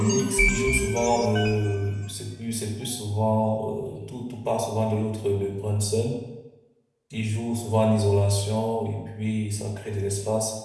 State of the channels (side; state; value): both; identical; correlation 1.00